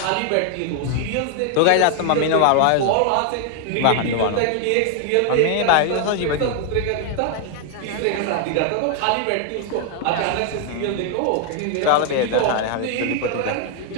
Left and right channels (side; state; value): both; different; correlation 0.00